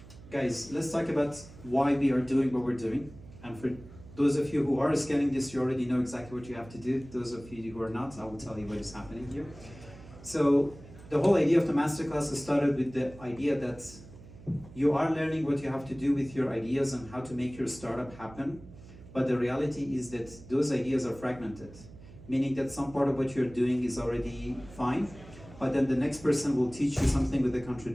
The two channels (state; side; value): noise; right; hum, 18 dB below the sound